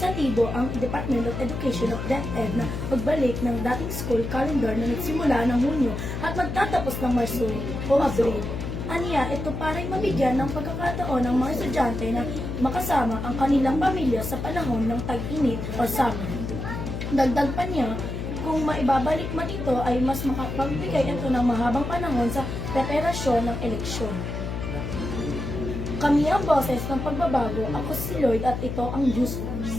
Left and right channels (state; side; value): noise; left; hum, 4 dB below the sound